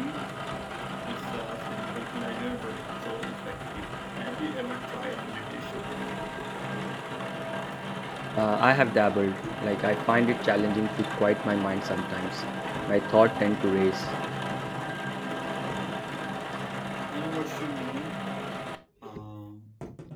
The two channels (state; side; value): identical; both; correlation 1.00